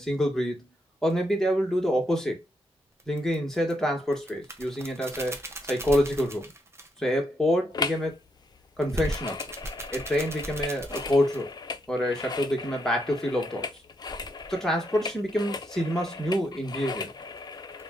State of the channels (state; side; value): normal; both; correlation 0.79